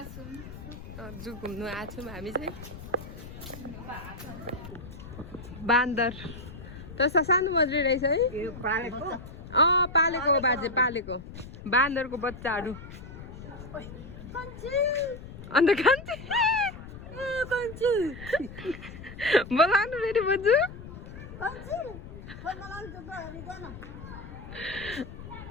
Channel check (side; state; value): left; noise; rumble, 13 dB below the sound